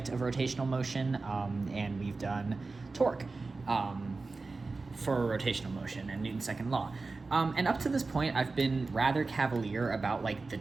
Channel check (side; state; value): left; quieter; 3.8 dB